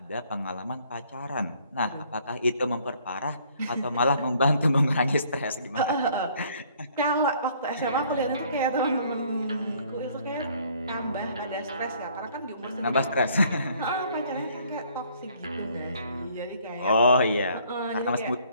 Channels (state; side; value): inverted; both; correlation -0.61